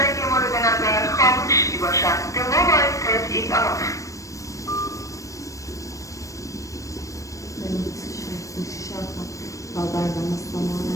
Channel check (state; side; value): late; right; 0.16 ms